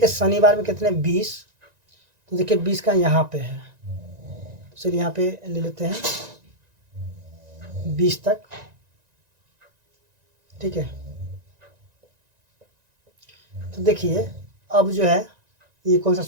शनिवार में कितने 20, तो देखिए 20 का यहाँ पे है, तो चलिए यहाँ पे ले लेते हैं 20 तक। ठीक है, तो देखिए अब जो है ये कौन सा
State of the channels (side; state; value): left; late; 1.9 ms